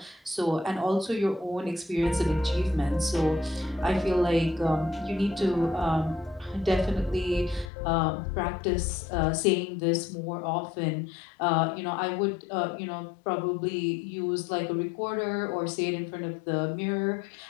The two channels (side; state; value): right; drops out; at 7.7 s